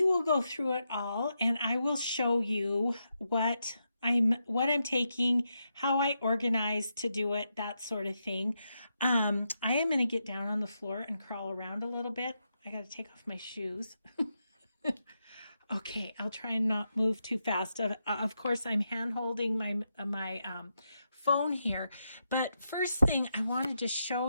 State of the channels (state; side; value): inverted; both; correlation -0.84